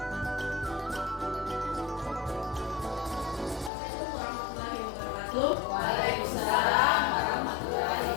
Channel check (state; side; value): drops out; right; at 3.7 s